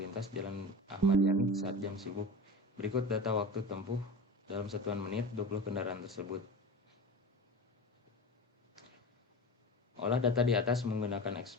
Jalan Ahmad Yani saat jam sibuk. Berikut data waktu tempuh dalam satuan menit 20 kendaraan tersebut. Olah data di atas menggunakan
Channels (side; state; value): both; normal; correlation 0.30